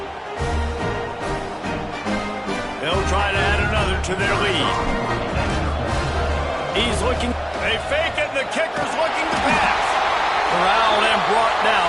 They'll try to add another to their lead. He's looking. They fake it, and the kicker's looking to pass. Corralled and brought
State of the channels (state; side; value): identical; both; correlation 1.00